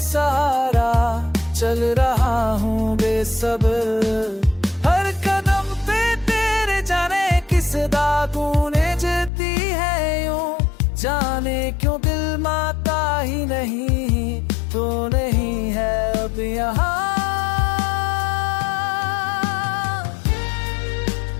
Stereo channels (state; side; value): drops out; right; at 9.3 s